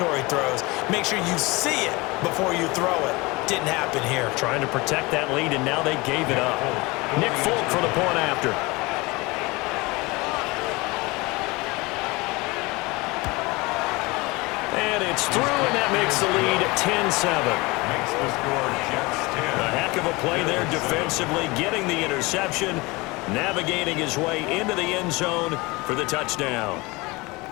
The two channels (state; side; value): quieter; right; 23.9 dB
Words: throws. Make sure you see it before you throw it. Didn't happen here. Trying to protect that lead, and now they gave it up. Nick Folk for the point after. through, and that makes the lead 10-7. Makes the score Jets 10. A heck of a play there defensively, getting the interception, navigating his way into the end zone for the touchdown.